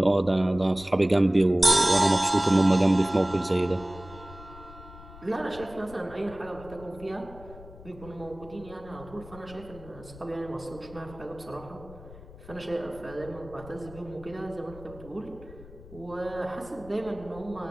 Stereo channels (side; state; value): left; noise; rumble, 18 dB below the sound